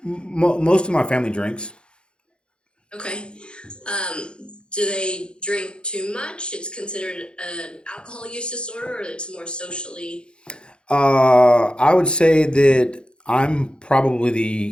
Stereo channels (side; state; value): right; late; 0.053 ms